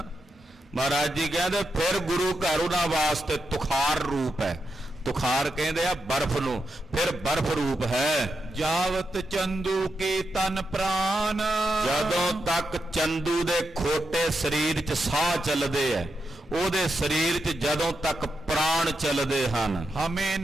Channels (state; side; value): normal; both; correlation 0.86